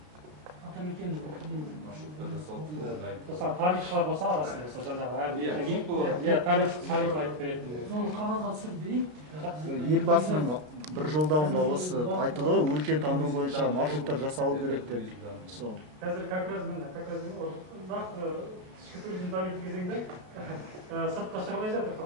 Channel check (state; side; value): late; left; 33 ms